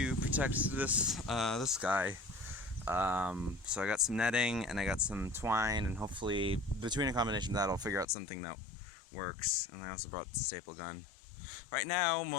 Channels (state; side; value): drops out; right; at 8.1 s